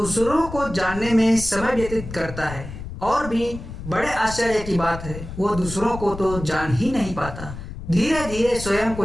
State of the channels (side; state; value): left; noise; rumble, 11 dB below the sound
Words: को जानने में समय व्यतीत करता है। और भी बड़े आश्चर्य की बात है, वह दूसरों को तो जान ही नहीं पाता। धीरे धीरे स्वयं